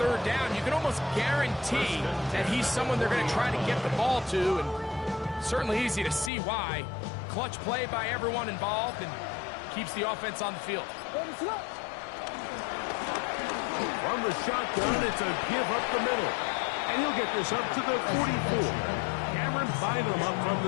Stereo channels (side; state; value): right; drops out; at 6.3 s